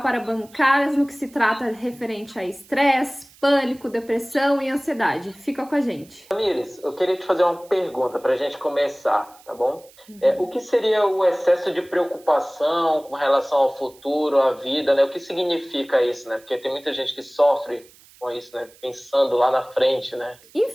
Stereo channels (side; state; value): right; noise; hiss, 26 dB below the sound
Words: para bancárias, no que se trata referente a estresse, pânico, depressão e ansiedade. Fica com a gente. Tamires, eu queria te fazer uma pergunta para a gente começar, tá bom? O que seria o excesso de preocupação com relação ao futuro, à vida, né? O que significa isso, né? Porque tem muita gente que sofre com isso, né? Pensando lá na frente, né?